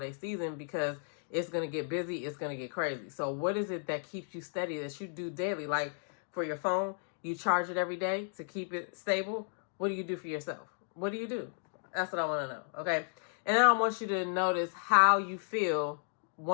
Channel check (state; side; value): silent; right; digital silence